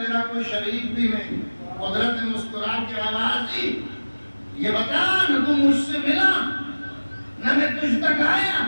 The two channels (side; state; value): both; inverted; correlation -1.00